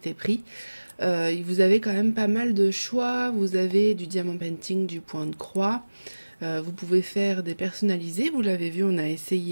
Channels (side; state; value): both; inverted; correlation -1.00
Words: Vous avez quand même pas mal de choix. Vous avez du diamant painting, du point de croix. Vous pouvez faire des personnalisés. Vous l'avez vu, on a